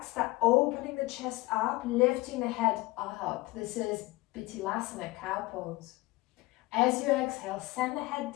start opening the chest up, lifting the head up. This is Vinyasa, cow pose. As you exhale, send the head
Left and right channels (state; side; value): quieter; right; 20.8 dB